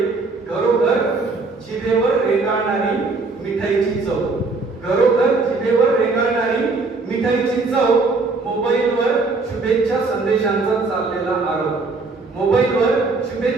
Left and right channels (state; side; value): quieter; left; 3.8 dB